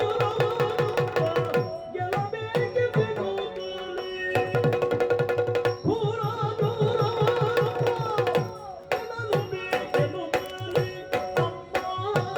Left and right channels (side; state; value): both; identical; correlation 1.00